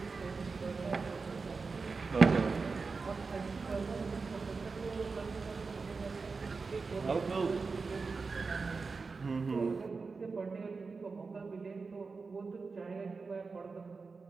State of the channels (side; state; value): left; quieter; 4.5 dB